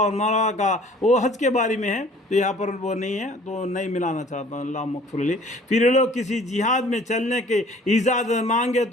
مروہ کا، وہ حج کے بارے میں ہے تو یہاں پر وہ نہیں ہے تو نہیں ملانا چاہتا ہوں، اللہ مغفر لی۔ پھر لوگ کسی جہاد میں چلنے کے اجازت مانگے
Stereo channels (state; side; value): normal; both; correlation 0.52